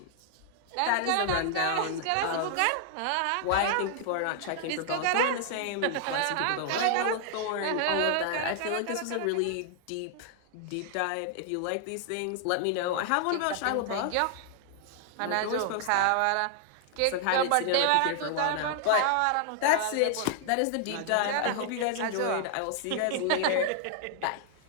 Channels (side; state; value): both; different; correlation 0.00